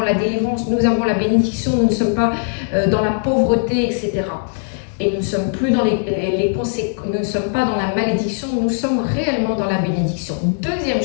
la délivrance, nous avons la bénédiction, nous ne sommes pas dans la pauvreté, etc. Et nous ne sommes plus dans nous ne sommes pas dans la malédiction, nous sommes réellement dans la bénédiction. Deuxième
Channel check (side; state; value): right; silent; 67 dB below the other